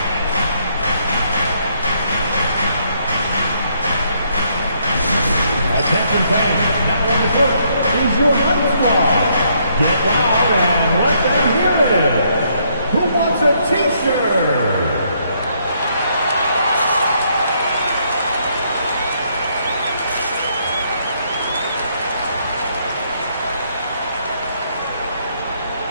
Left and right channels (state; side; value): inverted; both; correlation -0.71